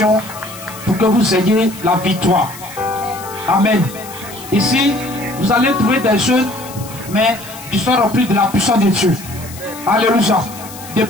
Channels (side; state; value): left; noise; hiss, 16 dB below the sound